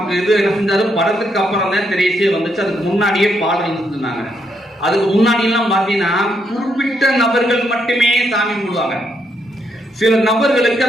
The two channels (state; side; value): normal; both; correlation 0.77